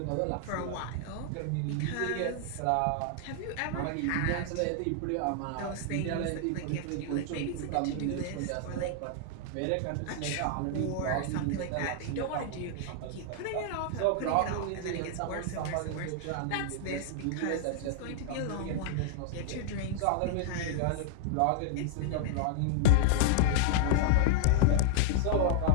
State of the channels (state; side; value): different; both; correlation 0.00